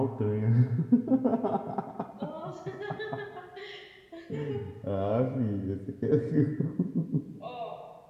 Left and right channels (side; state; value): both; identical; correlation 1.00